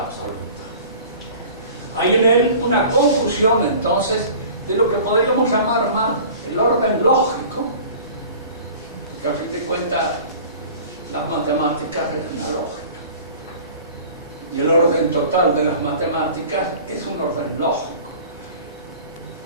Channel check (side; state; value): both; inverted; correlation -0.43